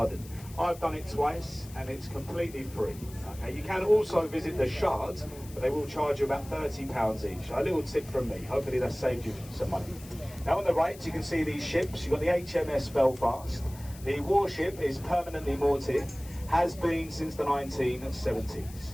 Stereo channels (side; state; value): left; noise; hiss, 19 dB below the sound